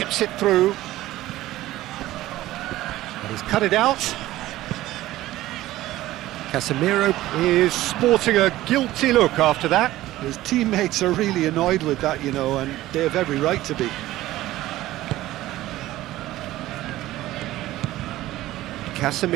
it through. And he's cut it out. Casemiro is sporting a guilty look after that. His teammates are really annoyed with that, you know, and they have every right to be.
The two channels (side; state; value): left; quieter; 15.8 dB